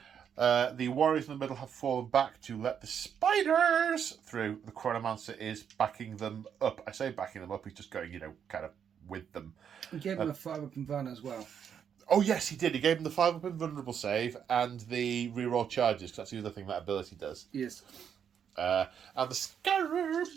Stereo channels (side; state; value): left; quieter; 8.0 dB